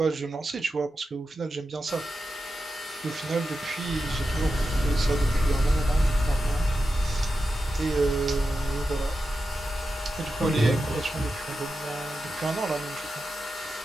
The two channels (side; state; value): both; normal; correlation 0.90